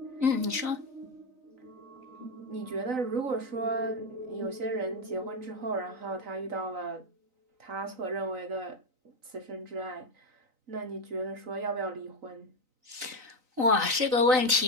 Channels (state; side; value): late; left; 3.9 ms